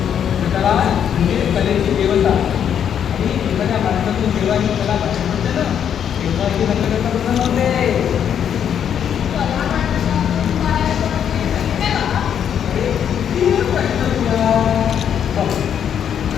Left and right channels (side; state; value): right; quieter; 8.7 dB